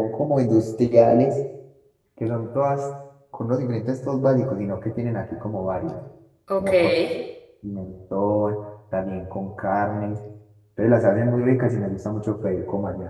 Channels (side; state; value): both; identical; correlation 1.00